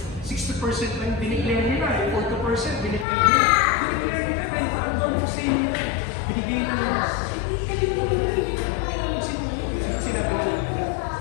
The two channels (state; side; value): drops out; right; at 3.1 s